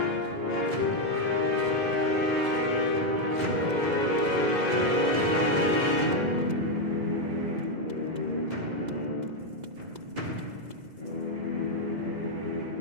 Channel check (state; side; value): late; left; 2.0 ms